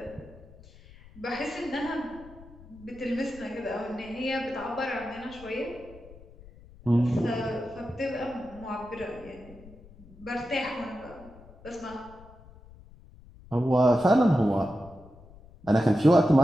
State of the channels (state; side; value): noise; left; rumble, 21 dB below the sound